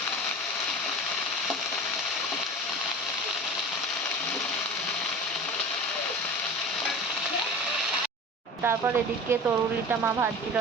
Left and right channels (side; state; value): both; normal; correlation 0.36